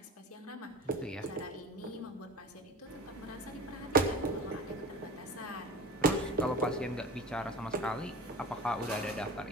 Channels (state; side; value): normal; both; correlation 0.36